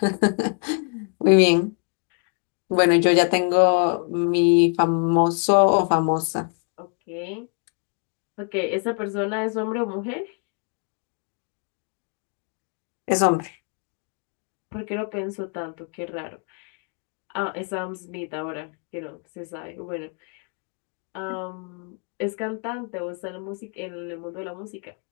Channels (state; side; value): quieter; right; 39.9 dB